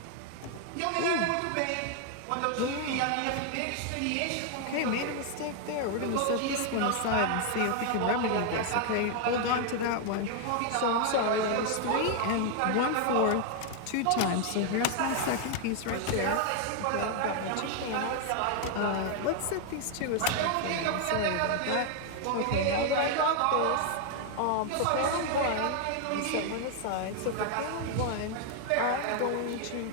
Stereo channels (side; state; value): both; different; correlation 0.00